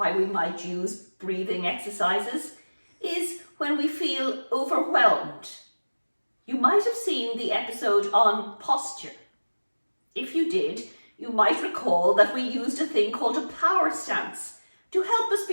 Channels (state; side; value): inverted; both; correlation -1.00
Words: we might use breathing exercises is when we feel overwhelmed. You might have seen the episode on posture. If you did, you might recall that we used a thing called a power stance to help us